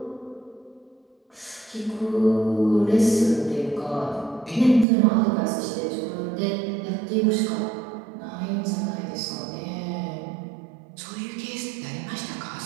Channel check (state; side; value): drops out; left; at 4.9 s